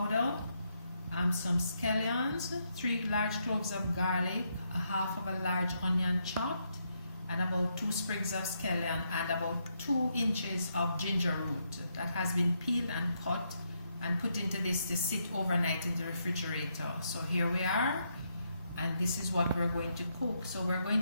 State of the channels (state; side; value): inverted; both; correlation -0.78